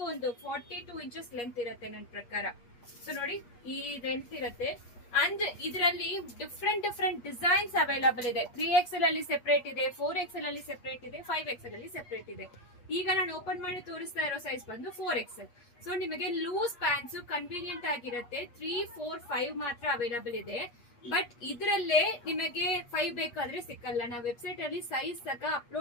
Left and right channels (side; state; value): right; late; 8.4 ms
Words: ಒಂದು 42 ಇಂಚಸ್ ಲೆಂತ್ ಇರುತ್ತೆ ನನ್ನ ಪ್ರಕಾರ. ಸೊ ನೋಡಿ ಈ ಲೆಂತ್ ಇರುತ್ತೆ. ಅಂಡ್ ಇದರಲ್ಲಿ ಡಿಫ್ರೆಂಟ್ ಡಿಸೈನ್ಸ್ ಅವೈಲಬಲ್ ಇದೆ. 3XL ಅಲ್ಲಿ ಸೆಪರೇಟ್ ಇದೆ, 4XL ಅಲ್ಲಿ ಸೆಪರೇಟ್ ಇದೆ, 5XL ಅಲ್ಲಿ ಸೆಪರೇಟ್ ಇದೆ. ಈಗ ನಾನು ಓಪನ್ ಮಾಡಿ ತೋರಿಸ್ತಾ ಇರೋ ಸೈಜ್ ಬಂದು 4XL. ಸೊ ನಿಮಗೆ ಲೂಸ್ ಪ್ಯಾಂಟ್ಸ್ ಕನ್ವೀನಿಯಂಟ್ ಆಗಿರುತ್ತೆ. 3, 4, 5 ಮಾತ್ರ ಅವೈಲಬಲ್ ಇದೆ. ಬಟ್ ಇದರಲ್ಲೇ ನಿಮಗೆ 5 ಬೇಕಾದ್ರೆ ಸಿಕ್ಕಲ್ಲ. ನಾವು ವೆಬ್ಸೈಟ್ ಅಲ್ಲಿ ಸೈಜ್ ಸಹ